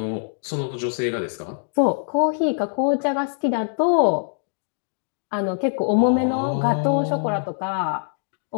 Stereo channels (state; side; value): silent; right; digital silence